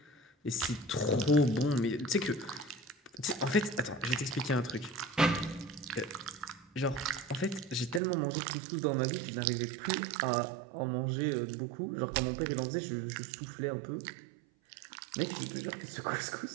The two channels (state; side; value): drops out; left; at 8.0 s